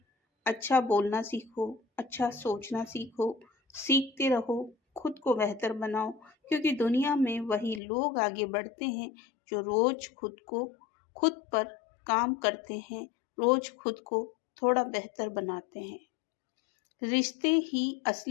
अच्छा बोलना सीखो, अच्छा सोचना सीखो, सीखते रहो, खुद को बेहतर बनाओ। क्योंकि दुनिया में वही लोग आगे बढ़ते हैं जो रोज खुद पर काम करते हैं, रोज खुद को थोड़ा बेहतर बनाते हैं। रिश्ते ही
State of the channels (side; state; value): right; drops out; at 7.8 s